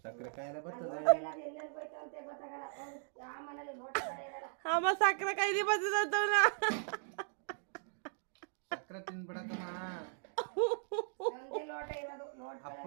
ಸಕ್ಕರೆ ಕಾಯಿಲೆ ಬರ್ತದೆ ಅಮ್ಮ ಸಕ್ಕರೆ ಕಾಯಿಲೆ ಬರ್ತದ ಸಕ್ಕರೆ ತಿನ್ಬಿಡಕಮ್ಮ ಅಪ್ಪ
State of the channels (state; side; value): silent; left; digital silence